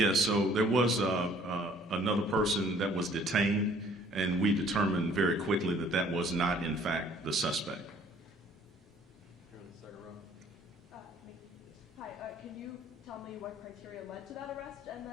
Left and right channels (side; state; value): both; normal; correlation 0.57